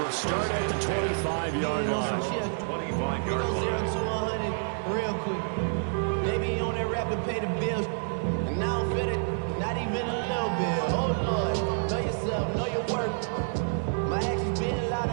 start at the 25-yard line. 25-yard line. 0 to 100 real quick. They be on that rap and pay the bills. And I don't feel it, not even a little bit. Oh, Lord, know yourself, know your worth. My actions being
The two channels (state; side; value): silent; left; digital silence